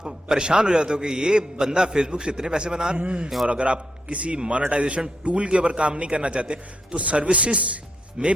پریشان ہو جاتے ہو کہ یہ بندہ فیس بک سے اتنے پیسے بنا رہا ہے۔ اور اگر آپ کسی مانیٹائزیشن ٹول کے اوپر کام نہیں کرنا چاہتے تو سروسز میں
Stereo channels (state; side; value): normal; both; correlation 0.80